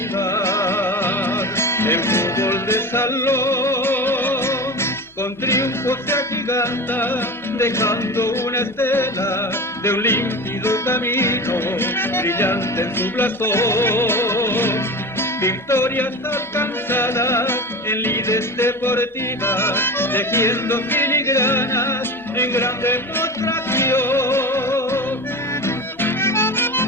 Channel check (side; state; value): both; normal; correlation 0.29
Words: el fútbol de salón, con triunfo se agiganta, dejando una estela de un límpido camino, brillante en su blasón. Victorias alcanzadas en lides deportivas, tejiendo filigranas en gran demostración.